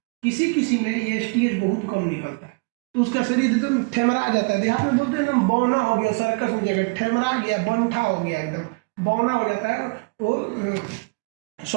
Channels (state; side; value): quieter; left; 30.6 dB